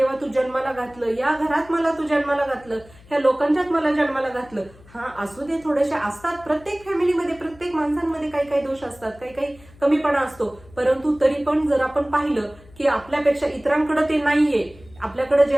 तू जन्माला घातलं, या घरात मला तू जन्माला घातलं, ह्या लोकांच्यात मला जन्माला घातलं. हा, असू दे, थोडेसे असतात प्रत्येक फॅमिलीमध्ये, प्रत्येक माणसांमध्ये काही दोष असतात, काही कमीपणा असतो. परंतु तरी पण जर आपण पाहिलं की आपल्यापेक्षा इतरांकडे ते नाहीये, आपल्याकडे जे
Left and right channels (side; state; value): left; noise; hum, 24 dB below the sound